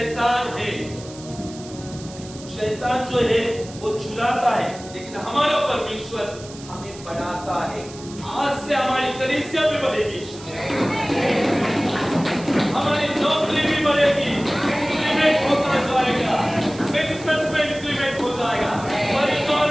है। शैतान जो है वो चुराता है, लेकिन हमारा परमेश्वर हमें बढ़ाता है। आज से हमारी कलीसिया भी बढ़ेगी, हमारी नौकरी भी बढ़ेगी, इंक्रीमेंट होता जाएगा, बिजनेस में इंक्रीमेंट हो जाएगा,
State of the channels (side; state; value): right; noise; hiss, 17 dB below the sound